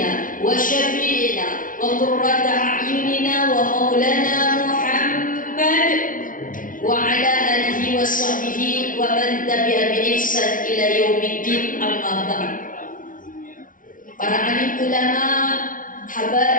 sahbihi wa man tabi'a bi ihsan ila yaumiddin, amma ba'd. Para alim ulama,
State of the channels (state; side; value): late; right; 0.39 ms